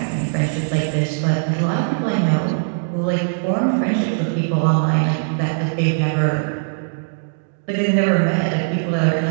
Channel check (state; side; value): silent; left; digital silence